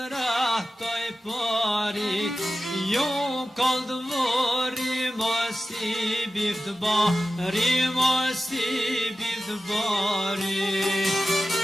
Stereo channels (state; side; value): normal; both; correlation 0.93